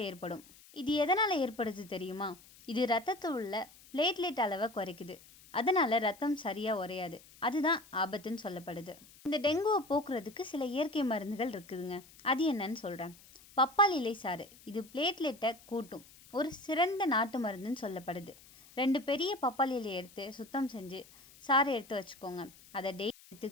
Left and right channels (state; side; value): noise; left; hiss, 23 dB below the sound